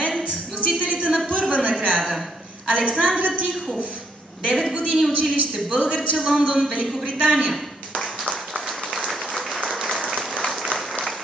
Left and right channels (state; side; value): normal; both; correlation 0.72